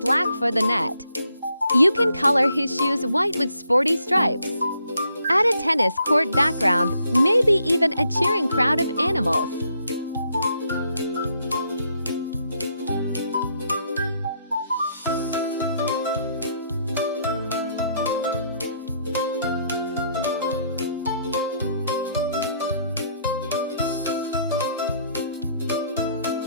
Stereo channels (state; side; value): inverted; both; correlation -0.72